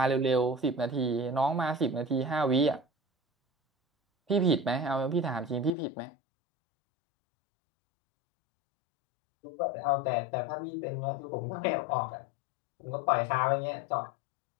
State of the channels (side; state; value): right; drops out; at 5.7 s